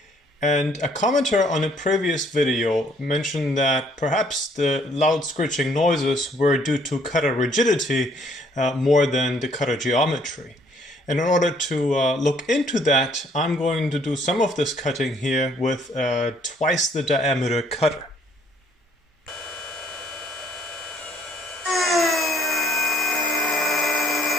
And a commenter on a previous video mentioned that perhaps the loud screeching noises were due to cutter rigidity more than the cutter geometry. And in order to look into that, I'm going to do some of this cutting here with twice the diameter cutter.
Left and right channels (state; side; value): normal; both; correlation 0.64